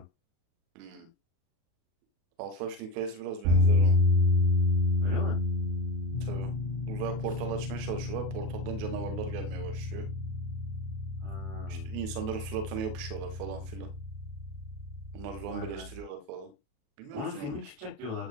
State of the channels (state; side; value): late; left; 37 ms